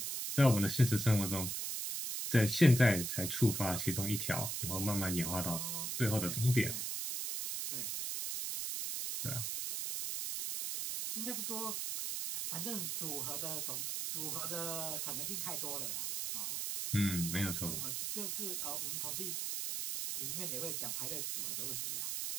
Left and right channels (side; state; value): right; noise; hiss, 2 dB below the sound